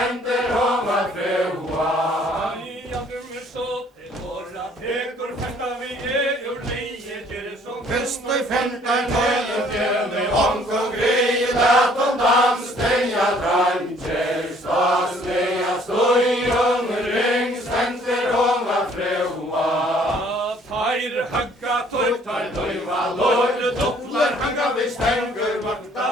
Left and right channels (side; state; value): both; normal; correlation 0.59